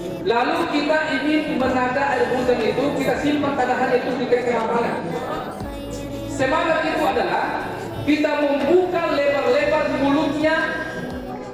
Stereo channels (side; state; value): both; identical; correlation 1.00